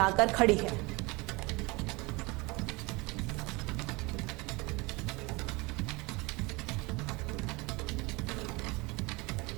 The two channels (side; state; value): left; quieter; 25.2 dB